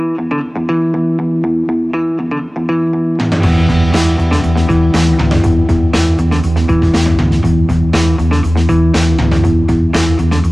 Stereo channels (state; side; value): normal; both; correlation 0.97